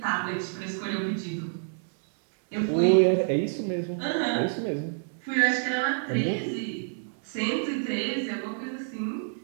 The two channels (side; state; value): left; silent; digital silence